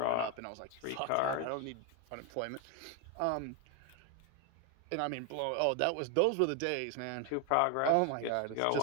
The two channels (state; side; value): different; both; correlation 0.01